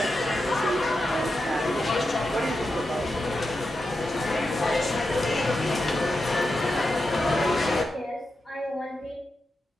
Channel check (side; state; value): both; normal; correlation 0.89